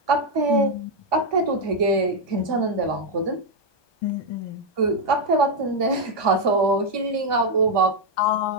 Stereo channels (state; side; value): late; right; 1.2 ms